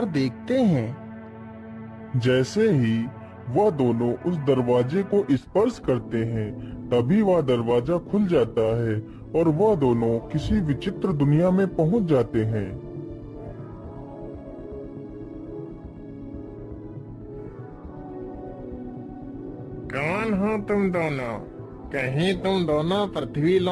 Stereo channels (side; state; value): both; identical; correlation 1.00